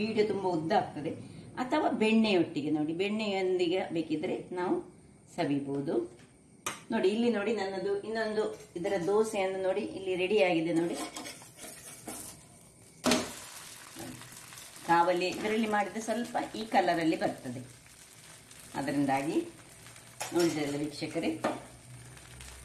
ತುಂಬಾ ಉದ್ದ ಆಗ್ತದೆ, ಅಥವಾ ಬೆಣ್ಣೆಯೊಟ್ಟಿಗೆ. ನೋಡಿ, ಬೆಣ್ಣೆಯೊಂದಿಗೆ ಬೇಕಿದ್ರೆ ನಾವು ಸವಿಬಹುದು. ನೋಡಿ, ಇಲ್ಲಿ ನೋಡಿ ನನ್ನದು ಇನ್ನೊಂದು ಇದರ ದೋಸೆಯನ್ನು ನೋಡಿ ಇಲ್ಲಿ ರೆಡಿ ಆಗಿದೆ. ನೋಡಿ, ಕಾವಲಿ ಇದರಲ್ಲಿ ಮಾಡಿದ್ರೆ ಸ್ವಲ್ಪ ಈ ಕಲರ್ ಅಲ್ಲಿ ಬರ್ತದೆ. ಅದರಿಂದಾಗಿ ನೋಡಿದ್ರಲ್ಲ ವೀಕ್ಷಕರೇ,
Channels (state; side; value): identical; both; correlation 1.00